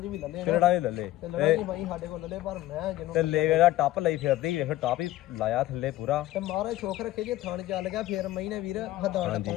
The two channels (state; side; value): quieter; right; 15.2 dB